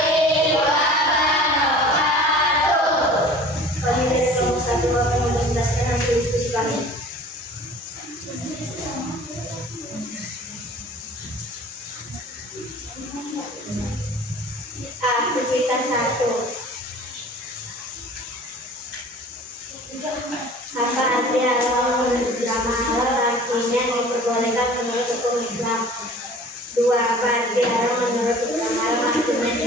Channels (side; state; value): both; normal; correlation 0.45